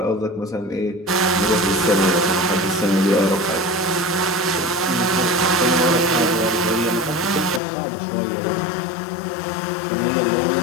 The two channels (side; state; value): right; drops out; at 7.6 s